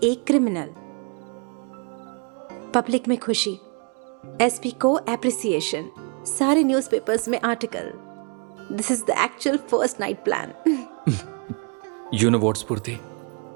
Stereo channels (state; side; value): quieter; left; 36.5 dB